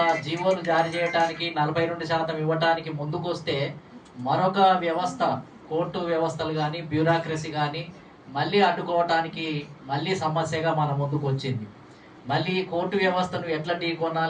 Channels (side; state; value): both; identical; correlation 1.00